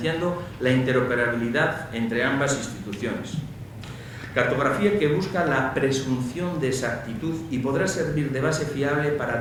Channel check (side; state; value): both; identical; correlation 1.00